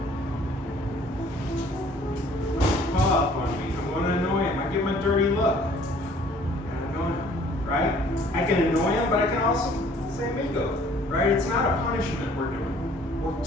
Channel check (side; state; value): both; normal; correlation 0.56